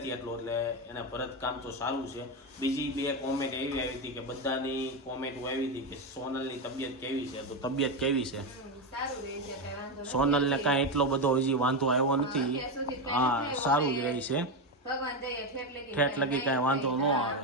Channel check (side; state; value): both; normal; correlation 0.11